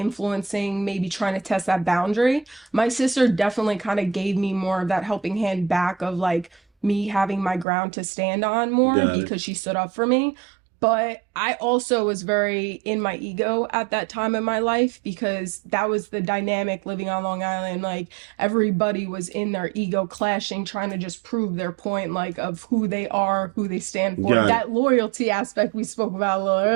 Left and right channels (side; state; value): left; drops out; at 7.7 s